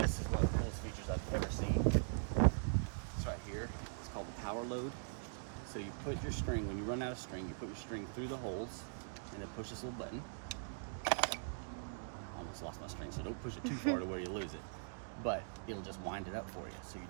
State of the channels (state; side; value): silent; left; digital silence